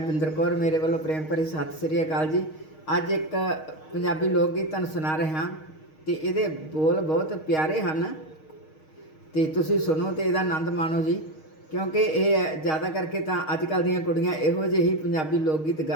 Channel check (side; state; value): right; late; 6.4 ms